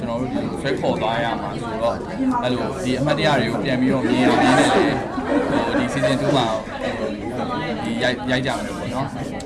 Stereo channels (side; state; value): both; identical; correlation 1.00